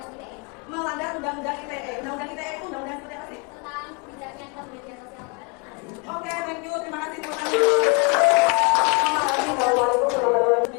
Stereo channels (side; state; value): right; quieter; 32.2 dB